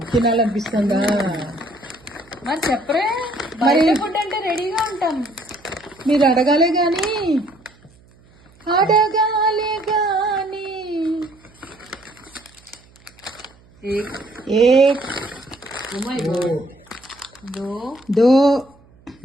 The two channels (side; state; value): right; noise; hum, 28 dB below the sound